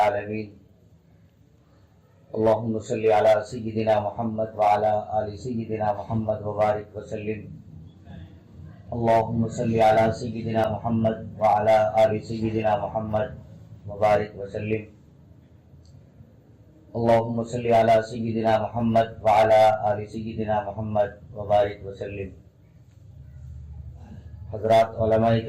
اللهم صل على سيدنا محمد وعلى آل سيدنا محمد وبارك وسلم. اللهم صل على سيدنا محمد وعلى آل سيدنا محمد وبارك وسلم. اللهم صل على سيدنا محمد وعلى آل سيدنا محمد وبارك وسلم. حضرات علماء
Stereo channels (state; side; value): identical; both; correlation 1.00